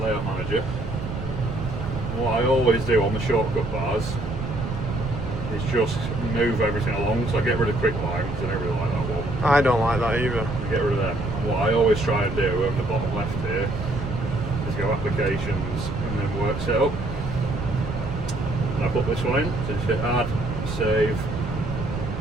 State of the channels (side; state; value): right; noise; rumble, 6 dB below the sound